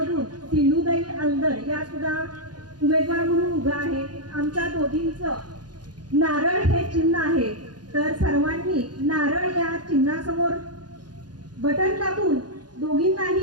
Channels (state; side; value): late; left; 0.69 ms